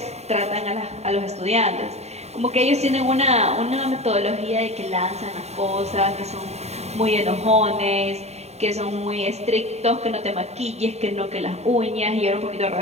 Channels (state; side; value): late; left; 0.31 ms